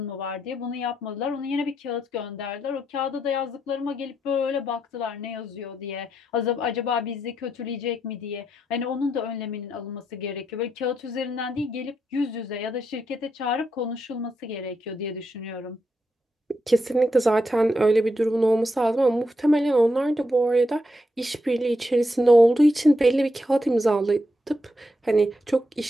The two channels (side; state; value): both; normal; correlation 0.82